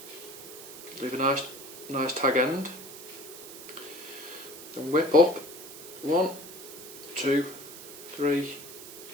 Leave a nice tag end. Then whip up 1, 2, 3,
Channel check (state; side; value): noise; right; hiss, 14 dB below the sound